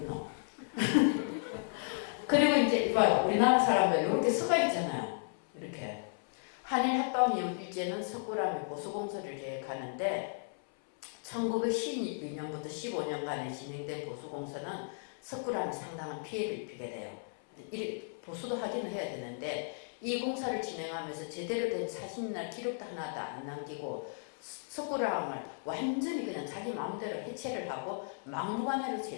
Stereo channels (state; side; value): silent; right; 55 dB below the other